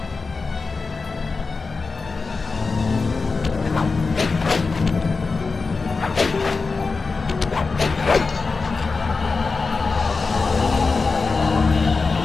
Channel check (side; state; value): right; quieter; 4.3 dB